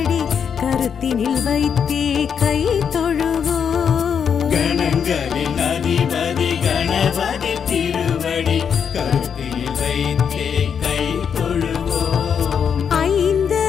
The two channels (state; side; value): quieter; right; 7.2 dB